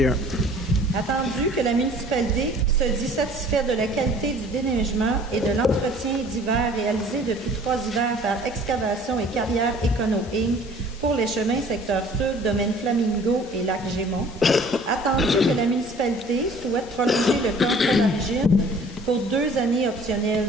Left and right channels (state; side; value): normal; both; correlation 0.51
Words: Attendu que la municipalité se dit satisfaite de la qualité du déneigement et de l'entretien d'hiver réalisé depuis 3 hivers par Excavation et Carrière Econo Inc. pour les chemins secteur sud, domaine Flamingo et lac Gémont. Attendu que la municipalité souhaite prolonger le contrat d'origine pour 2 années optionnelles